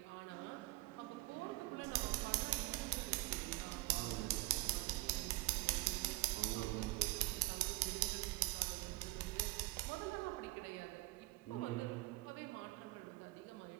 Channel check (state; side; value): quieter; left; 20.6 dB